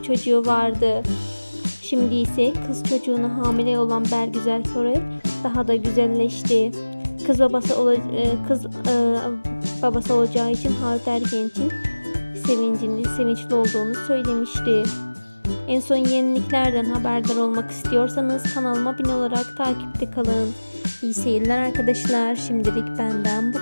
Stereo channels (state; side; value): inverted; both; correlation -1.00